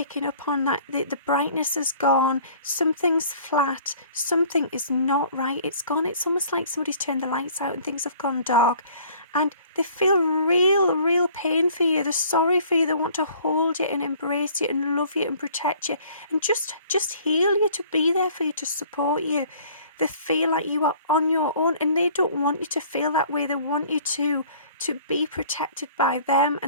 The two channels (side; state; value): both; inverted; correlation -0.53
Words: up on, that the brightness is gone, something's flat, something is not right, it's gone. It's almost like somebody's turned the lights out and things have gone dark. And they feel real pain for you. They're sorry for you. They want to hold you and embrace you and love you and protect you and just heal you, to be there for you, to support you. They feel like you are on your own, and they don't want you to feel that way. They want you to be protected by them